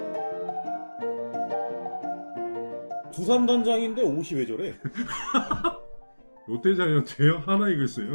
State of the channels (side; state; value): both; inverted; correlation -1.00